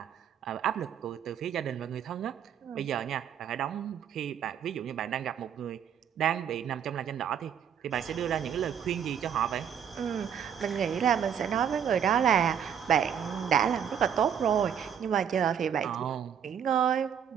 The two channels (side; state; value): left; quieter; 8.4 dB